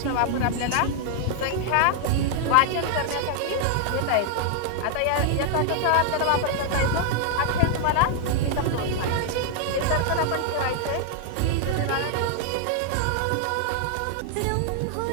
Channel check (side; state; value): both; different; correlation 0.00